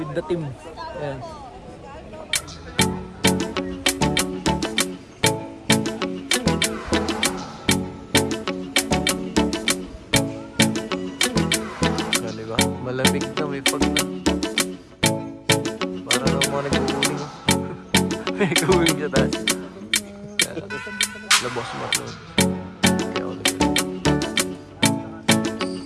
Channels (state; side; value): identical; both; correlation 1.00